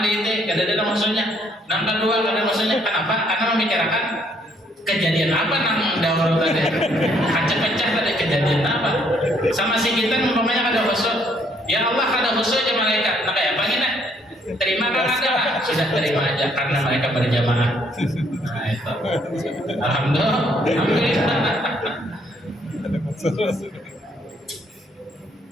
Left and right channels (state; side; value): normal; both; correlation 0.67